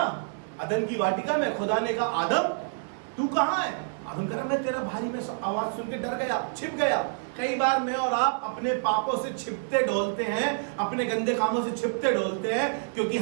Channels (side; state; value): left; silent; 60 dB below the other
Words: अदन की वाटिका में, खुदा ने कहा आदम तू कहां है? आदम कह रहा मैं तेरा भाई, में आवाज सुन के डर गया, छिप गया। कई बार मैं और आप अपने पापों से छिपते डोलते हैं, अपने गंदे कामों से छिपते डोलते हैं, क्योंकि